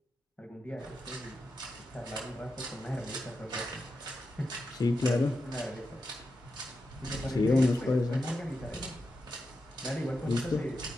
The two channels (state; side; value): normal; both; correlation 0.88